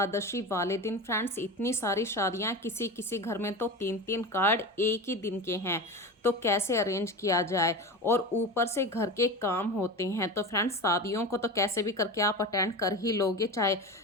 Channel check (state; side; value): normal; both; correlation 0.27